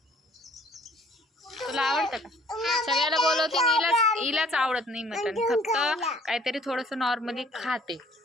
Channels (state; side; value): normal; both; correlation 0.57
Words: तुला आवडतं का? सगळ्याला बोलवते, हिलाच आवडत नाही मटण. फक्त काहीतरी थोडस नॉर्मली खाते.